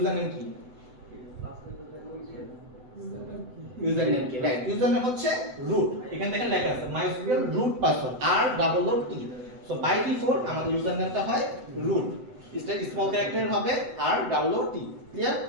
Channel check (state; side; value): late; left; 7.9 ms